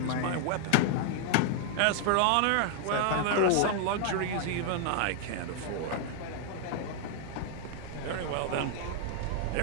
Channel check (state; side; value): different; both; correlation 0.00